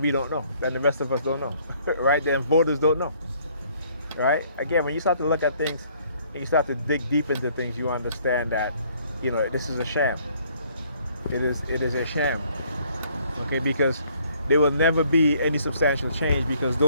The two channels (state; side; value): inverted; both; correlation -0.62